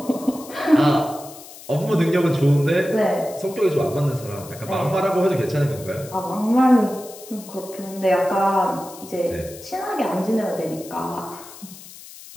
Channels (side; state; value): left; noise; hiss, 17 dB below the sound